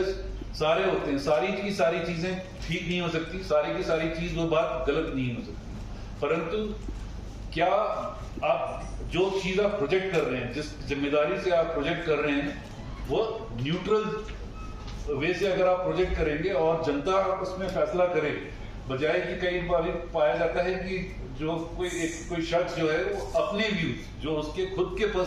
सारे होते हैं, सारी की सारी चीजें ठीक नहीं हो सकती, सारी की सारी चीज वो बात गलत नहीं हो सकती, परंतु क्या आप जो चीज आप प्रोजेक्ट कर रहे हैं, जिस जिम्मेदारी से आप प्रोजेक्ट कर रहे हैं, वो न्यूट्रल वे से अगर आप प्रोजेक्ट करेंगे और जनता उसमें फैसला करे, बजाय कि कई बार पाया जाता है कि जो कोई शख्स जो है वो अपने व्यूज, जो उसके खुद के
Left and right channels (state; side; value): identical; both; correlation 1.00